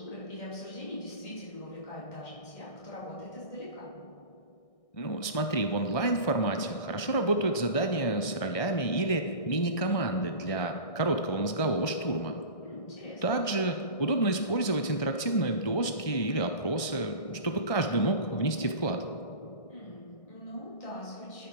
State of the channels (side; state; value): right; late; 1.6 ms